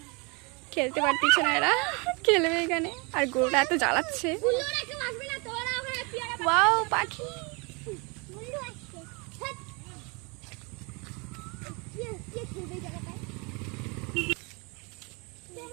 খেলতে পারতেছে না এরা, খেলবে এখানে আর গরুটা এত জ্বালাচ্ছে। ওয়াও পাখি,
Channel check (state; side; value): quieter; left; 30.4 dB